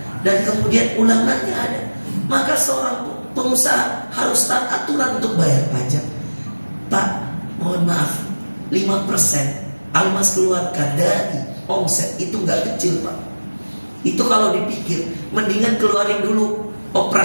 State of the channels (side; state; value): both; inverted; correlation -1.00